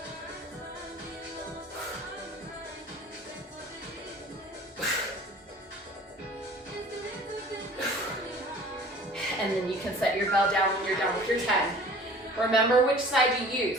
And then you can set your bell down when you're done with your 10. Remember which side you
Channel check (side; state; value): both; normal; correlation 0.46